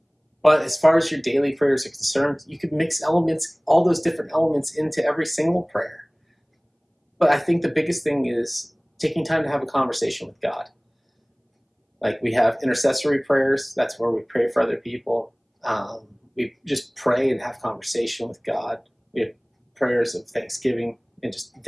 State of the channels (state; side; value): identical; both; correlation 1.00